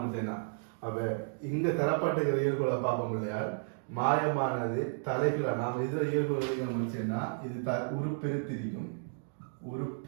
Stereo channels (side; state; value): left; silent; digital silence